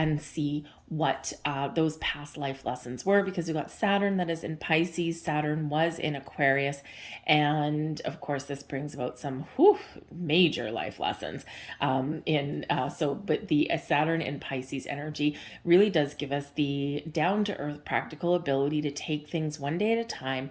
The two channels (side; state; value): both; identical; correlation 1.00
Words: see what those past life lessons were, because we've got Saturn that is in Pisces. Saturn was in Aquarius. And of course, this brings about some major life lessons but the Saturn in Pisces energy really does give us the down-to-earth practical ability to take things one day at a time